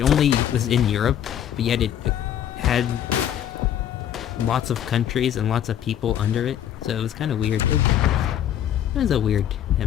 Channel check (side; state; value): right; quieter; 10.3 dB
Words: only was in Europe, but yet it had lots of countries and lots of people under it. So it was kind of weird. It was a weird